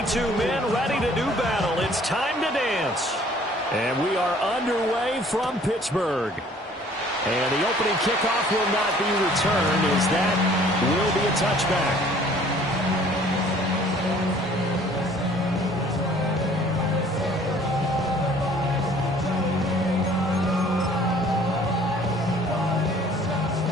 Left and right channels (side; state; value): both; normal; correlation 0.55